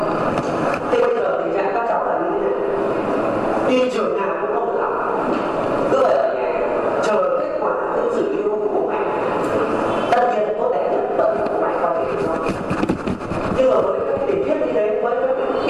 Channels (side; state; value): both; identical; correlation 1.00